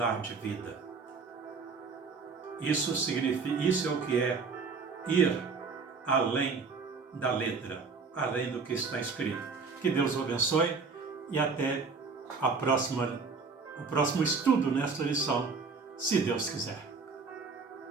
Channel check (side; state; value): left; quieter; 4.8 dB